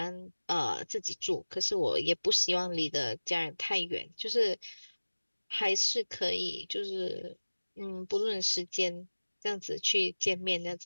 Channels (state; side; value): inverted; both; correlation -1.00